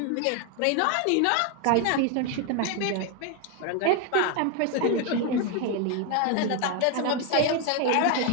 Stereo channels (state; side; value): different; both; correlation 0.01